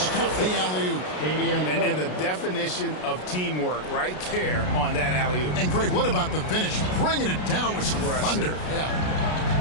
the alley-oop. And the definition of teamwork right there on that alley-oop. And Greg, what about the finish? Bringing it down with some thunder. Yeah.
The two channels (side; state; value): right; late; 33 ms